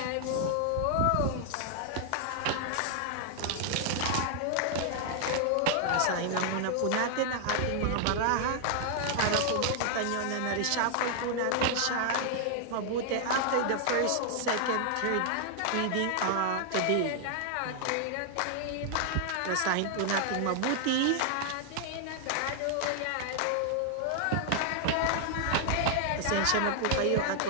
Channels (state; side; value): different; both; correlation 0.00